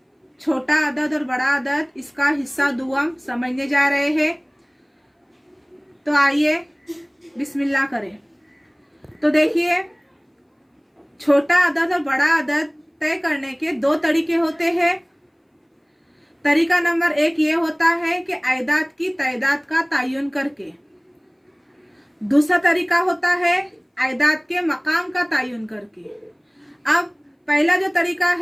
छोटा अदद और बड़ा अदद इसका हिस्सा दुआम समझने जा रहे हैं। तो आइए बिस्मिल्लाह करें। तो देखिए, छोटा अदद और बड़ा अदद तय करने के दो तरीके होते हैं। तरीका नंबर एक ये होता है कि आयदाद की तादाद का तयन करके। दूसरा तरीका होता है आयदाद के मकाम का तयन करके। अब पहला जो तरीका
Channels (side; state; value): both; identical; correlation 1.00